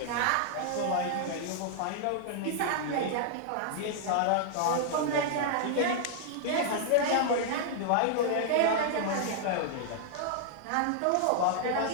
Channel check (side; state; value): both; different; correlation -0.01